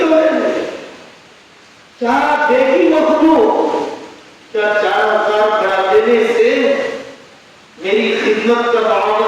توڑیں گے۔ کیا دیکھی مخلوق، کیا 4000 بڑھا دینے سے میری خدمت کا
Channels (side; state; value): both; identical; correlation 1.00